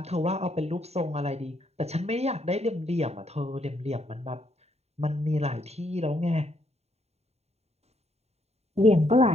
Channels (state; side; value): late; left; 0.31 ms